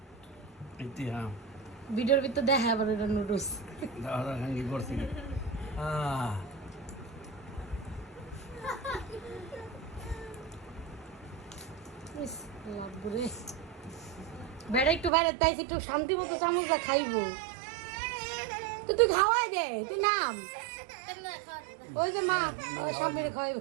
হ্যাঁ ভিডিওর ভিতর দেখা আবার এটা নুডলস দাদা খাঙ্গি করছি বেড়া একটু বাইরে তাই একটু শান্তি মতো চামচটা খাইবো তো তুই খাওয়াই দে তুই নাম ওই যে মা সামনে খাইব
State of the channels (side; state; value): left; drops out; at 15.1 s